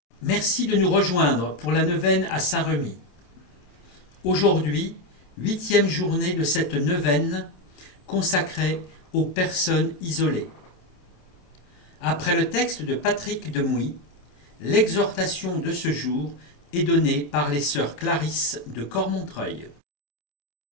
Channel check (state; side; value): late; right; 27 ms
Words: Merci de nous rejoindre pour la neuvaine à Saint-Remy. Aujourd'hui, 8e journée de cette neuvaine consacrée aux personnes isolées. Après le texte de Patrick Demouy, l'exhortation de ce jour est donnée par les sœurs Clarisse de Cormontreuil.